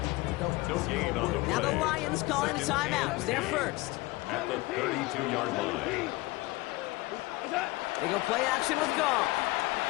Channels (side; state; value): right; quieter; 21.2 dB